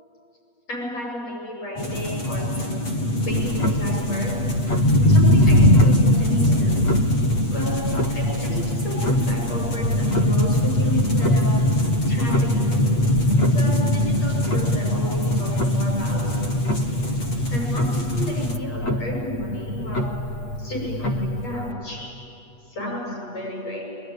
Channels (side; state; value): right; late; 8.4 ms